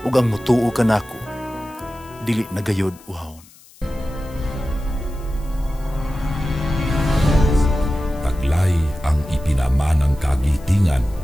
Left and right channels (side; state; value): left; noise; hiss, 25 dB below the sound